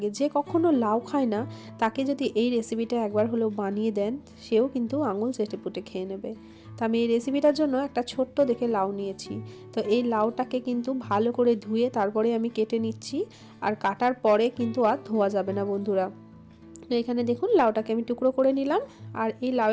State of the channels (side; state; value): both; identical; correlation 1.00